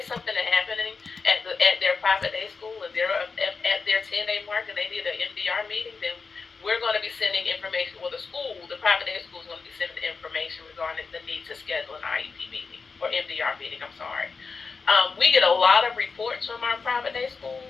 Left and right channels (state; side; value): quieter; right; 4.8 dB